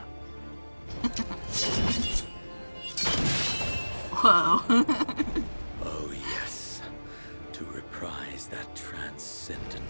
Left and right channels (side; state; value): both; inverted; correlation -1.00